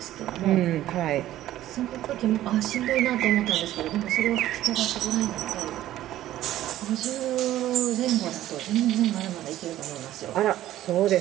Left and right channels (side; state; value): left; quieter; 13.7 dB